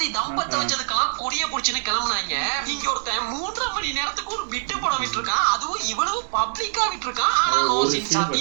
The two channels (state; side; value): silent; left; 63 dB below the other